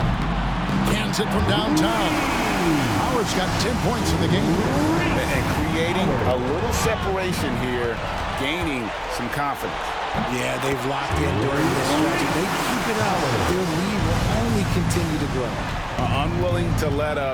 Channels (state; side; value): identical; both; correlation 1.00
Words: Cans it from downtown. Howard's got 10 points in the game. And creating a little separation here, gaining some confidence. Yeah, they've locked in during this stretch. They keep it out. Their lead will only continue to grow. Unwilling to let